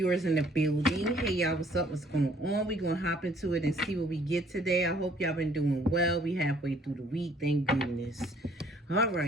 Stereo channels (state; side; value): normal; both; correlation 0.60